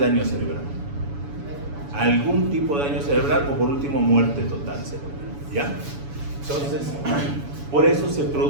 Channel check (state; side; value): late; left; 7.0 ms